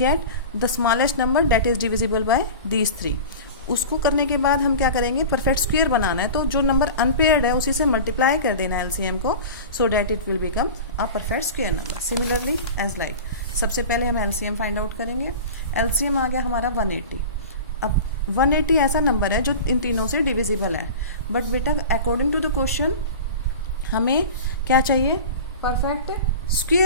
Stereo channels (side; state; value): both; inverted; correlation -0.33